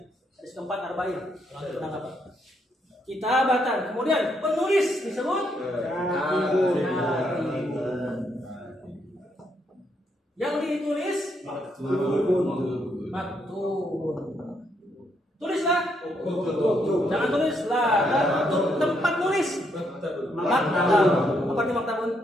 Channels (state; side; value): normal; both; correlation 0.75